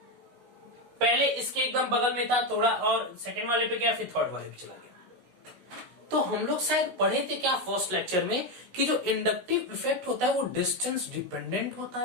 पहले इसके एकदम बगल में था थोड़ा, और सेकंड वाले पे गया, फिर थर्ड वाले पे चला गया। तो हम लोग शायद पढ़े थे क्या फर्स्ट लेक्चर में कि जो इंडक्टिव इफेक्ट होता है वो डिस्टेंस डिपेंडेंट होता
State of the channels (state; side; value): late; left; 16 ms